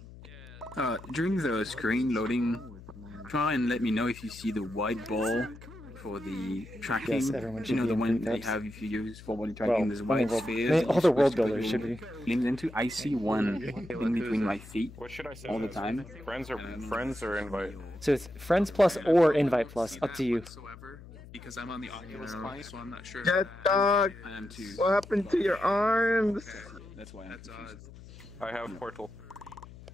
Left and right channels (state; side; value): noise; left; hum, 17 dB below the sound